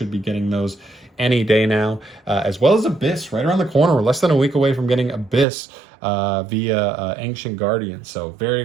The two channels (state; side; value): drops out; left; at 5.5 s